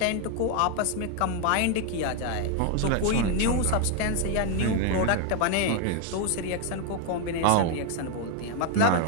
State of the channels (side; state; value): both; different; correlation 0.01